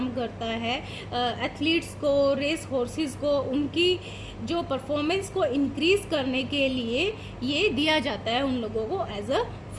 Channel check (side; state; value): both; identical; correlation 1.00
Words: करता है। एथलीट्स को, रेस हॉर्सेस को, उनकी जो परफॉर्मेंस को इंक्रीज करने के लिए ये दिया जाता है उन लोगों को as a